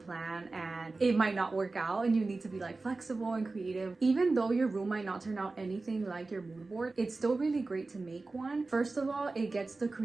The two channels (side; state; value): left; quieter; 3.5 dB